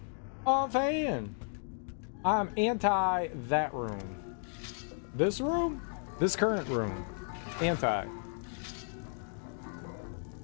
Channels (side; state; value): right; silent; 55 dB below the other